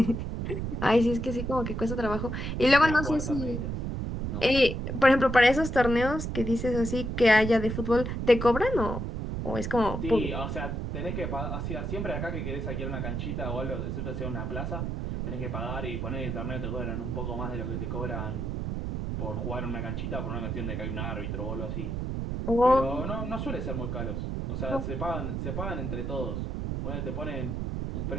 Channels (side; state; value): right; noise; rumble, 3 dB below the sound